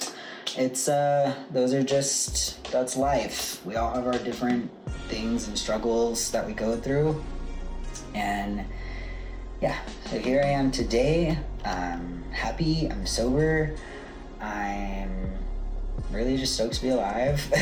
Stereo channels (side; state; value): both; identical; correlation 1.00